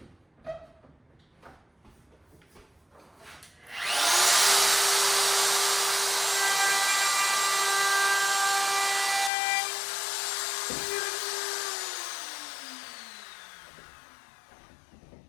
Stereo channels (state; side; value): drops out; right; at 9.3 s